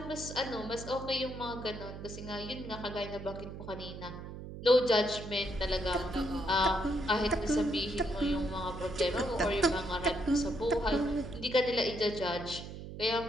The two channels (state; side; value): noise; right; hum, 10 dB below the sound